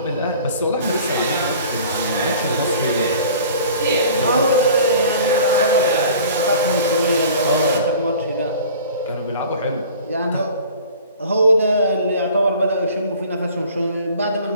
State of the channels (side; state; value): both; inverted; correlation -0.46